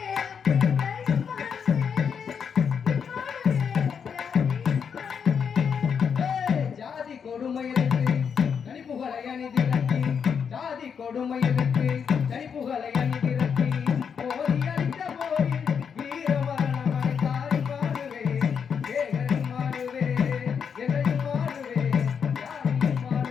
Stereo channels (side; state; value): right; quieter; 6.9 dB